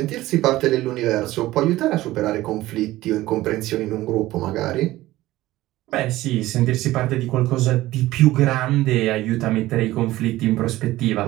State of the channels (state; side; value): quieter; left; 16.7 dB